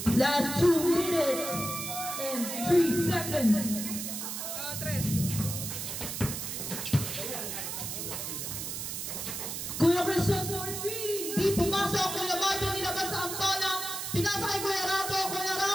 Last 2 minutes and 3 seconds. Tres. Kuya Christian for 3. Di pumasok. Kuya Marvin nilabas ang bola. Pinasa kay Kuya Rambo. Kuya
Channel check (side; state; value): right; noise; hiss, 5 dB below the sound